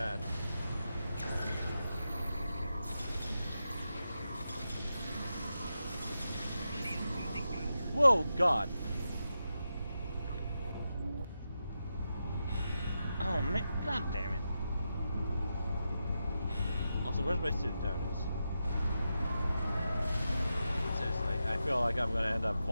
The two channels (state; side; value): inverted; both; correlation -0.88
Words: Whoa, God. Oh, man. God damn it. Also, where's my suit? There it is. Seriously, I feel like I'm going to end up